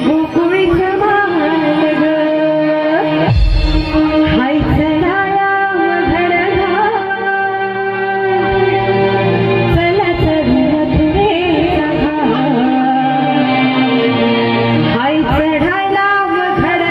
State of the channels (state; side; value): identical; both; correlation 1.00